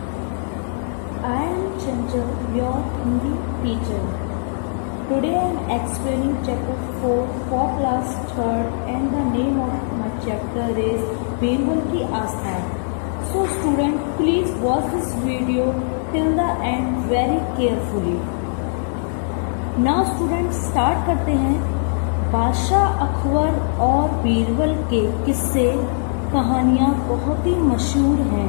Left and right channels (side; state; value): right; silent; digital silence